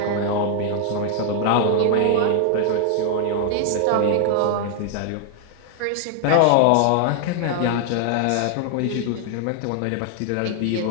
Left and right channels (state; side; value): different; both; correlation 0.00